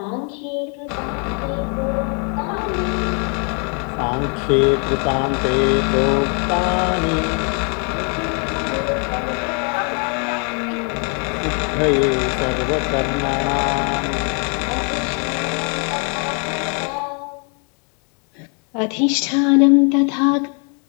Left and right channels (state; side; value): quieter; right; 38.5 dB